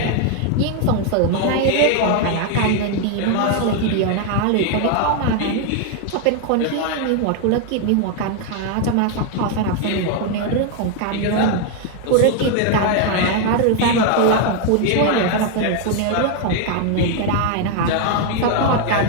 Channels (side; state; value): both; different; correlation 0.01